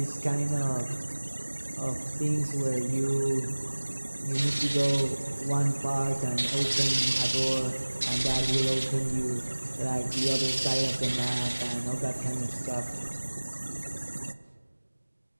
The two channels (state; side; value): inverted; both; correlation -1.00